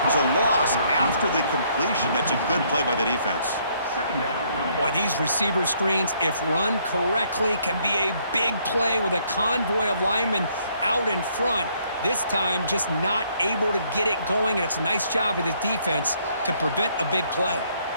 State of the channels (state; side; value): inverted; both; correlation -0.67